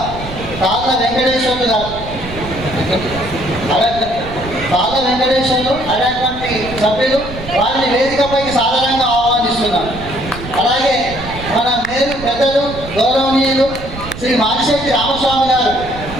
తాళ్ళ వెంకటేశ్వర్లు గారు అనేటువంటి సభ్యులు వారిని వేదికపైకి సాధారణంగా ఆహ్వానిస్తున్నాం. అలాగే మన మేలు పెద్దలు గౌరవనీయులు శ్రీ మారిశెట్టి రామస్వామి గారు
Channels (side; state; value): right; noise; rumble, 12 dB below the sound